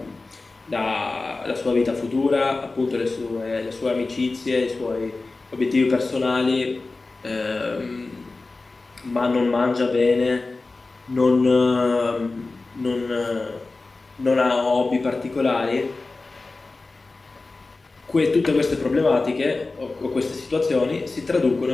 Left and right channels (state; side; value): quieter; right; 3.5 dB